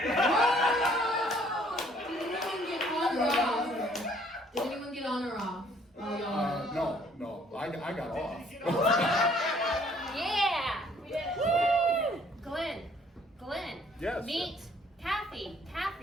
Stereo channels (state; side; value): normal; both; correlation 0.61